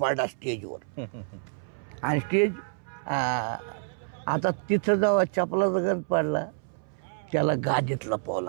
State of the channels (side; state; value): left; silent; 59 dB below the other